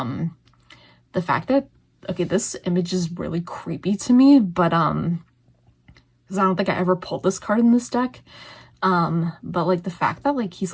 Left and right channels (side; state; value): both; identical; correlation 1.00